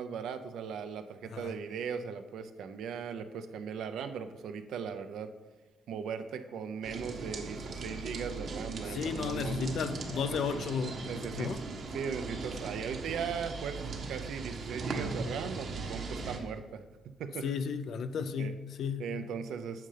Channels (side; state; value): both; normal; correlation 0.63